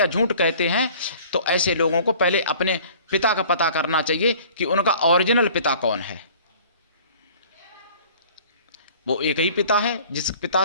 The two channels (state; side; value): inverted; both; correlation -0.49